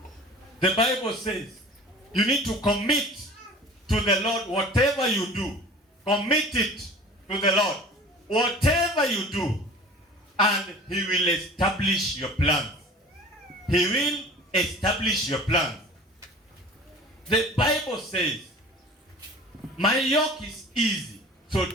The Bible says you need to commit to the Lord whatever you do. Commit it to the Lord. Whatever you do, and He will establish your plans. He will establish your plans. The Bible says, my yoke is easy, so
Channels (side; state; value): both; normal; correlation 0.42